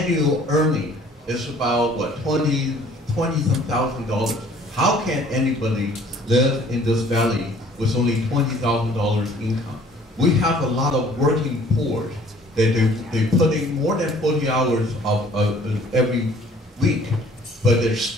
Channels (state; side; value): normal; both; correlation 0.55